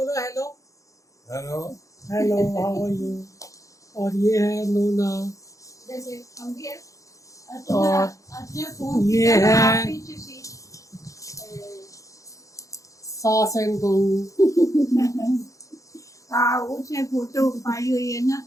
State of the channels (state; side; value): late; right; 0.16 ms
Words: Hello hello. Hello, how are you. और ये है नूना, जैसे हम भी है और ये है सास एंड बहू। हाँ उसने फोटो पाई हुई है ना।